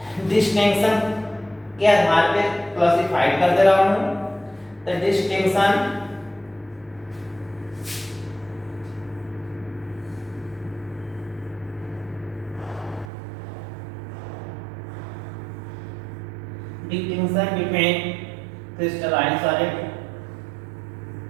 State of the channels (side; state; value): left; drops out; at 13.1 s